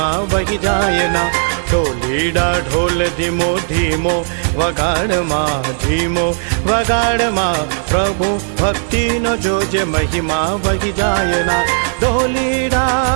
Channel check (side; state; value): left; silent; digital silence